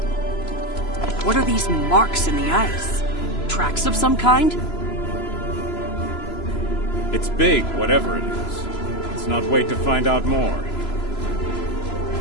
What are these marks in the ice? Tracks of some kind? It's big, whatever it is. Let's not wait to find out more.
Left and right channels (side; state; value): right; late; 3.0 ms